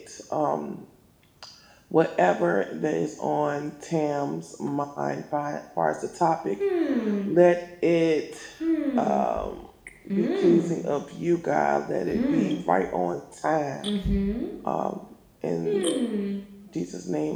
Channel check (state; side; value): identical; both; correlation 1.00